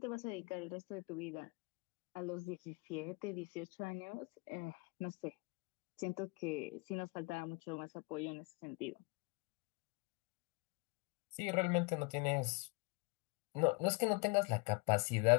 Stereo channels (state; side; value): quieter; right; 28.2 dB